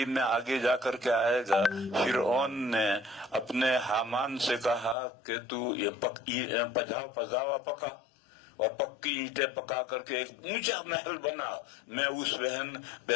میں آگے جا کر کے آئے گا، فرعون نے اپنے حامان سے کہا کہ تو یہ پجاوا پکا، اور پکی اینٹیں پکا کر کے ایک اونچا محل بنا، میں اس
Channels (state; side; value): drops out; right; at 5.0 s